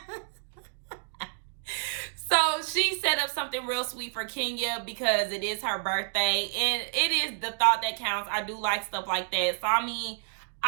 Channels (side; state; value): left; silent; digital silence